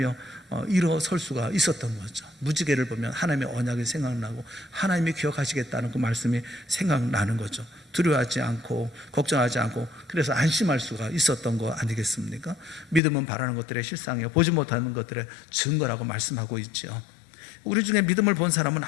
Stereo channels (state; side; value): drops out; right; at 13.0 s